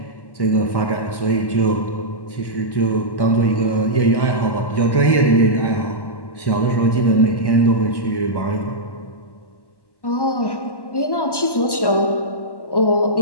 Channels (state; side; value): late; right; 1.1 ms